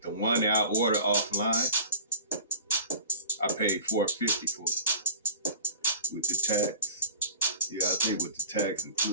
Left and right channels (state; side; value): inverted; both; correlation -0.38